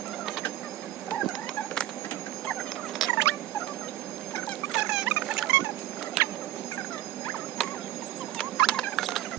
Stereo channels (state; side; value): quieter; left; 14.5 dB